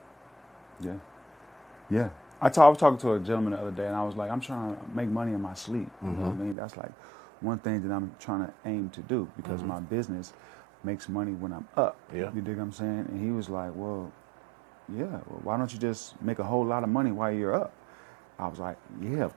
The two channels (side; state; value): left; drops out; at 6.6 s